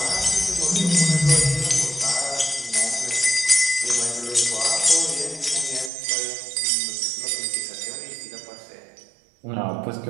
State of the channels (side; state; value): left; drops out; at 5.9 s